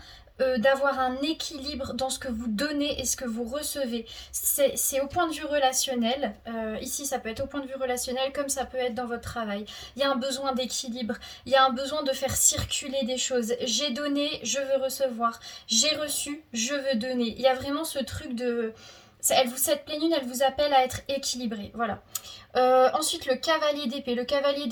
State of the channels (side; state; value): both; identical; correlation 1.00